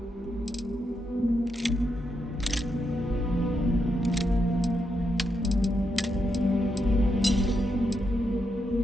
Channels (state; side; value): normal; both; correlation 0.82